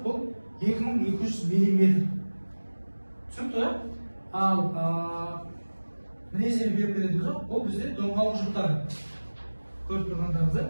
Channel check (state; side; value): inverted; both; correlation -1.00